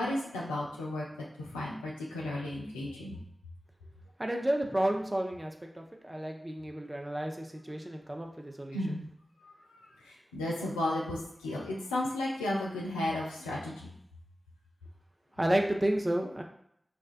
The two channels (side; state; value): both; normal; correlation 0.93